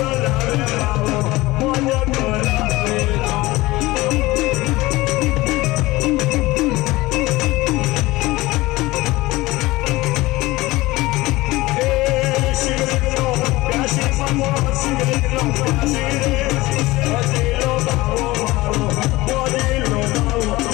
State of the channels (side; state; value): right; quieter; 19.8 dB